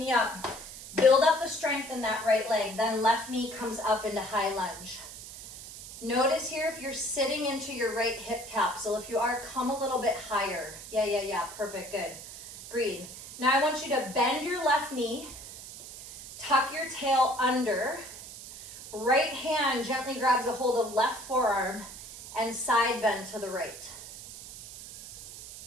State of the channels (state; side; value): noise; right; hiss, 13 dB below the sound